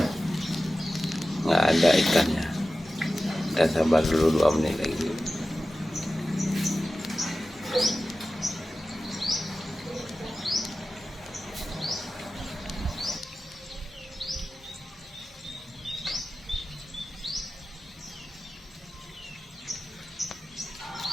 nggak ada ikannya. Kita sabar dulu 2 menit lagi.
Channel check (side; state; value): both; normal; correlation 0.95